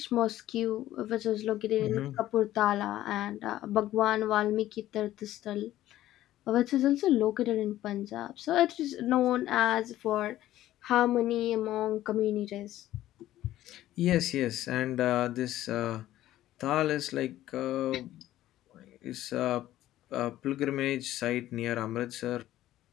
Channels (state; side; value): quieter; right; 14.1 dB